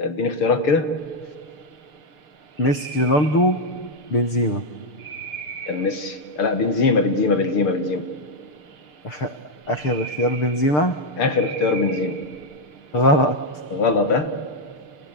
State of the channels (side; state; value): right; late; 6.7 ms